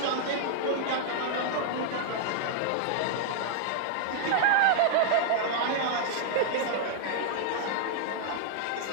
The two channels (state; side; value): different; both; correlation -0.01